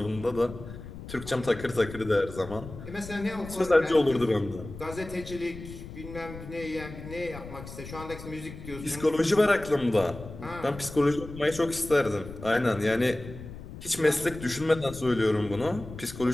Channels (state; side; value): noise; left; rumble, 13 dB below the sound